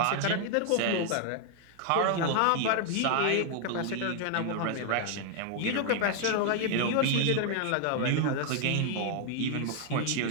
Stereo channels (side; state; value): both; different; correlation 0.00